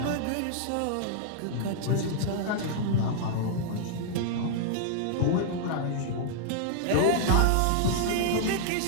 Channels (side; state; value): both; different; correlation -0.01